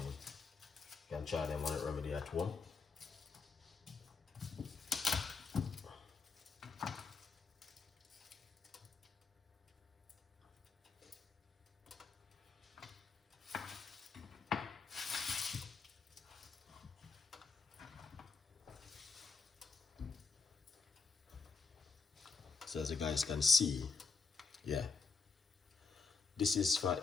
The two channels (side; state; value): right; quieter; 4.8 dB